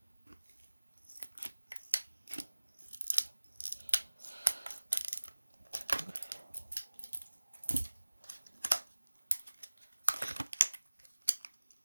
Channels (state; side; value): inverted; both; correlation -1.00